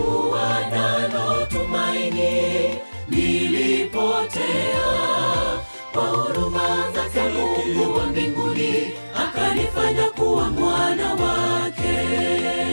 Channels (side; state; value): both; inverted; correlation -1.00